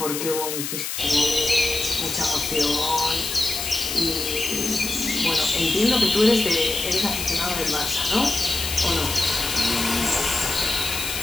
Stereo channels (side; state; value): left; noise; hiss, 4 dB below the sound